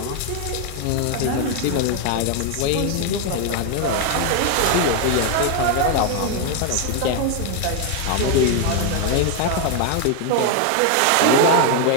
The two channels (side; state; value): both; different; correlation 0.01